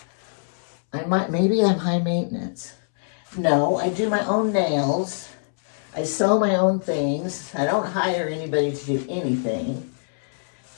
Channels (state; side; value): silent; right; 63 dB below the other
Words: Maybe I'm high maintenance. No, I do my own nails. I sew my own things. I don't hire anybody to do anything.